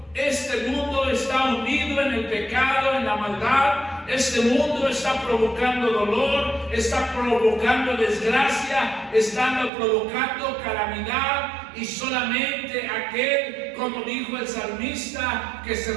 Este mundo está hundido en el pecado, en la maldad. Este mundo está provocando dolor, está provocando desgracia, está provocando calamidad, y solamente aquel, como dijo el salmista, que se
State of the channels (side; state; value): left; drops out; at 9.7 s